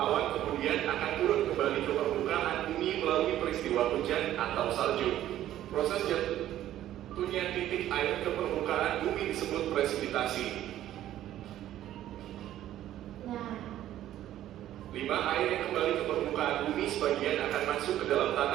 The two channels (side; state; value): left; quieter; 12.7 dB